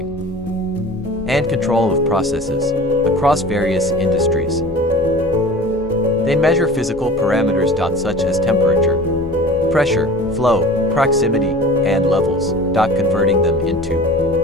and control of processes across various industries. They measure physical parameters such as temperature, pressure, flow, proximity, and levels, converting them into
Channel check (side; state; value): both; normal; correlation 0.41